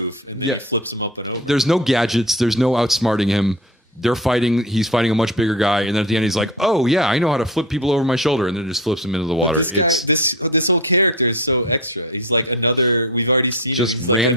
him up and over. There's no gadgets. There's no outsmarting him. They're fighting. He's fighting a much bigger guy, and then at the end, he's like, "Oh yeah, I know how to flip people over my shoulder," and then just flips him into the water. This whole character is so extra. He's like another. We've already seen just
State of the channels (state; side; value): normal; both; correlation 0.28